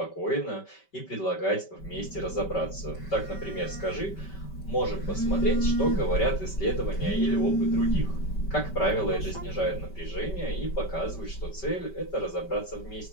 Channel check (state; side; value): late; right; 5.2 ms